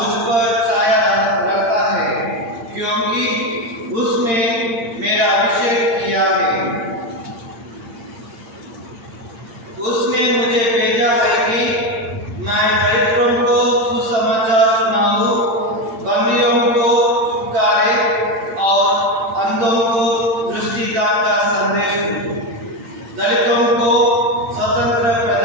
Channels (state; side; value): late; left; 8.8 ms